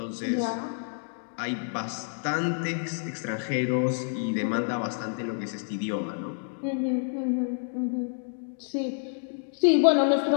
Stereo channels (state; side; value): silent; right; digital silence